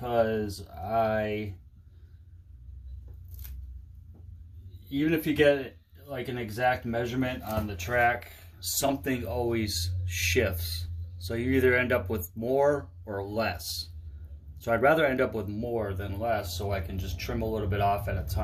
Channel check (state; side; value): identical; both; correlation 1.00